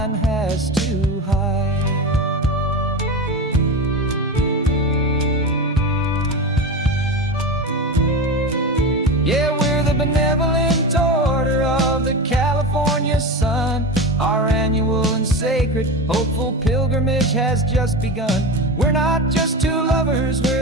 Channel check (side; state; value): both; normal; correlation 0.24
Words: has to hide. Yeah, we're the benevolent order of the California sun. Our annual and sacred hopeful pilgrimage has just begun. We're not just two lovers,